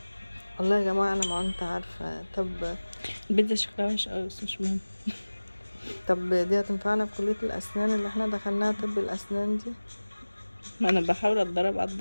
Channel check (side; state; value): both; inverted; correlation -1.00